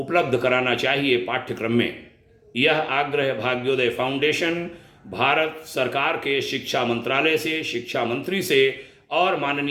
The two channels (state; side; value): identical; both; correlation 1.00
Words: कराना चाहिए पाठ्यक्रम में। यह आग्रह भाग्योदय फाउंडेशन भारत सरकार के शिक्षा मंत्रालय से, शिक्षा मंत्री से और